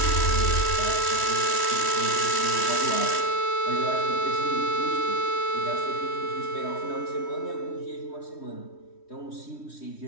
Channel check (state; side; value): late; right; 3.1 ms